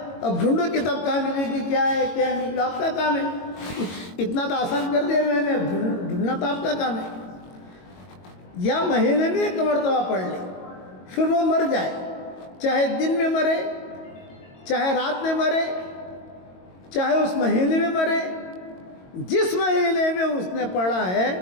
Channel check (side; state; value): right; late; 22 ms